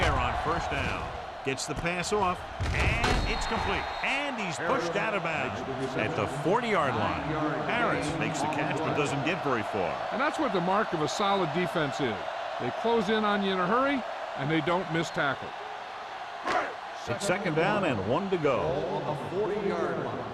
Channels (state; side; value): identical; both; correlation 1.00